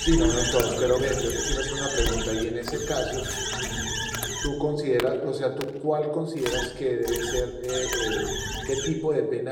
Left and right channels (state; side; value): identical; both; correlation 1.00